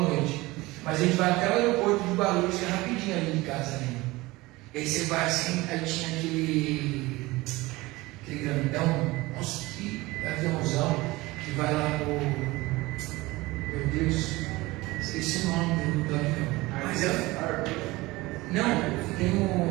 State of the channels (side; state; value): left; quieter; 20.7 dB